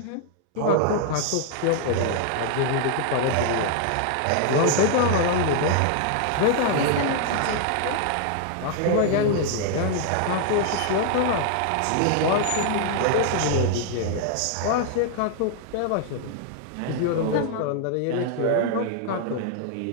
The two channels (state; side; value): different; both; correlation 0.00